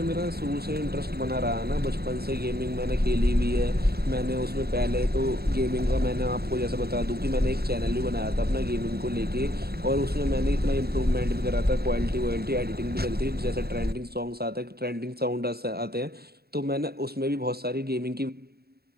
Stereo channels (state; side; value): late; left; 0.46 ms